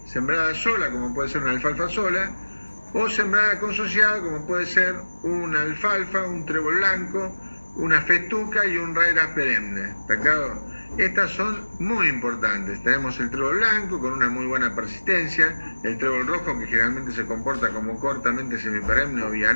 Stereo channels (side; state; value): both; inverted; correlation -1.00